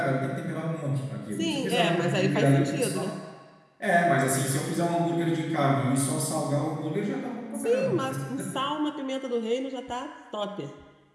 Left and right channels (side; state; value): both; identical; correlation 1.00